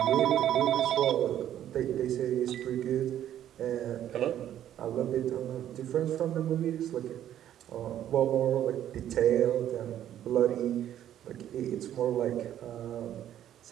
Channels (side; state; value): left; quieter; 11.2 dB